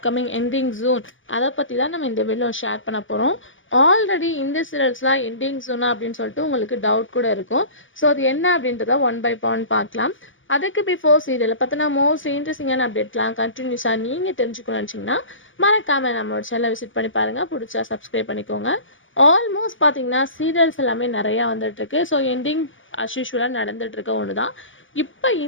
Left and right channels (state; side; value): late; right; 0.57 ms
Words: எண்டிங் ஜூன் அதை பற்றி தான் நம்ம இந்த வீடியோ ஷேர் பண்ண போகிறோம். ஆல்ரெடி இந்த சீரியல்ஸ்லாம் எண்டிங் ஜூனா அப்படின்னு சொல்லிட்டு உங்களுக்கு டவுட் கூட இருக்கும். ஸோ அது என்ன அப்படின்றத ஒன் பை ஒன் பார்க்கலாம். அதுக்கு பிஃபோர் சீரியலை பார்த்தினா மோஸ்ட் இன்ட்ரெஸ்டிங்கான அப்டேட்லாம் கண்டினியூஸாக நீங்கள் தெரிஞ்சுக்கணும்னு நினச்சிங்கன்னா மறக்காமல் நம்மளோட சேனலை விசிட் பண்ணி பாருங்கள். பிடிச்சா சப்ஸ்கிரைப் பண்ணிக்கோங்க. ஆல்மோஸ்ட் பார்த்தீங்கன்னா சீரியல்ஸ் எல்லாமே நிறையா வந்துட்டுருக்கு. ஸோ எண்டிங் அஸ்யூஷுவலாக நடந்துகிட்ருக்க ஒன்று தான். இப்போ